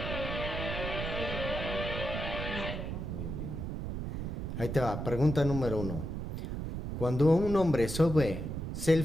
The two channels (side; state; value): right; noise; rumble, 5 dB below the sound